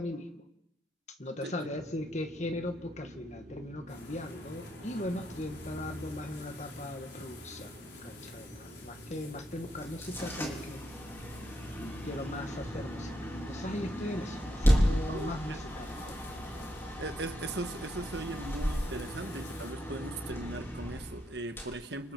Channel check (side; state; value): both; normal; correlation 0.79